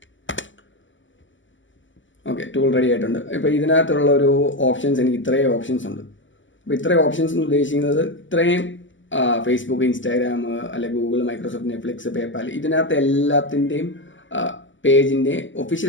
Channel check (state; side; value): late; right; 0.55 ms